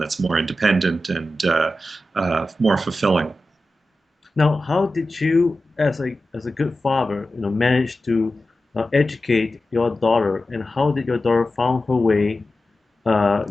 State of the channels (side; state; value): both; normal; correlation 0.93